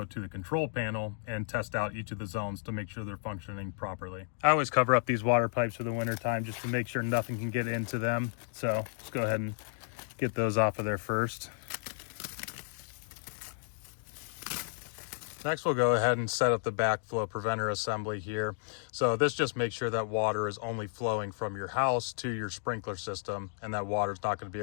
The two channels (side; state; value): right; silent; digital silence